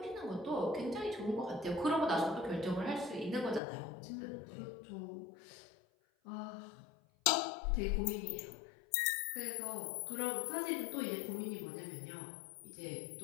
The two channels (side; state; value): right; drops out; at 3.6 s